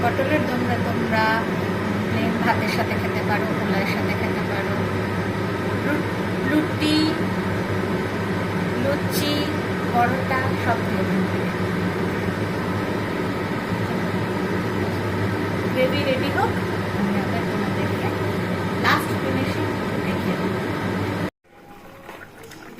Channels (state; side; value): identical; both; correlation 1.00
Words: পটলের দোমরা তোমরা প্লেন ভাতের সাথে খেতে পারো, পোলাওয়ের সাথে খেতে পারো, রুটি, লুচি, পরোটা সব দিয়ে। গ্রেভি রেডি হোক, আমি আবার তোমাদেরকে লাস্ট ফিনিশিং দেখিয়ে দেব।